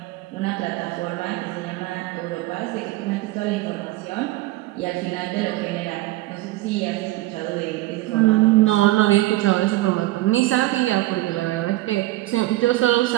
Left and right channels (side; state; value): left; quieter; 18.0 dB